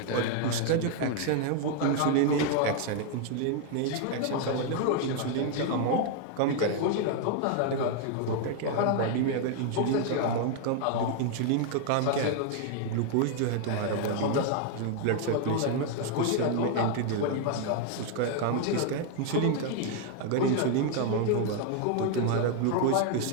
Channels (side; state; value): both; different; correlation 0.00